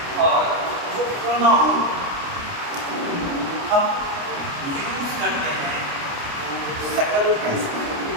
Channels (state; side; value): late; left; 29 ms